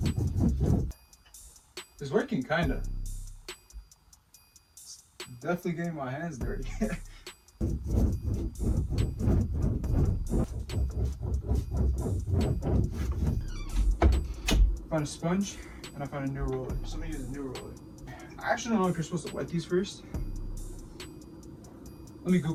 working, kinda. It's definitely getting my hands dirty. Found a sponge and I found a new roller. So I'm gonna use a new roller. I actually don't know if you're supposed to wet these first. Let me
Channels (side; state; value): both; identical; correlation 1.00